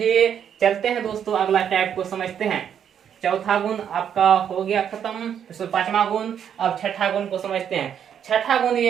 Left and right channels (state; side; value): quieter; left; 8.7 dB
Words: चलते हैं दोस्तों अगला टाइप को समझते हैं। चौथा गुण आपका हो गया खत्म, इसमें 5वां गुण। अब छठा गुण को समझते हैं। छठा गुण